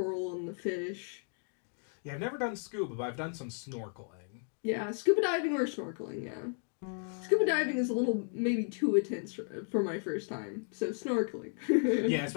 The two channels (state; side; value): silent; right; 55 dB below the other